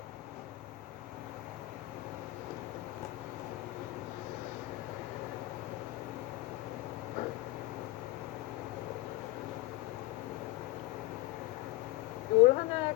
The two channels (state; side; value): quieter; right; 19.1 dB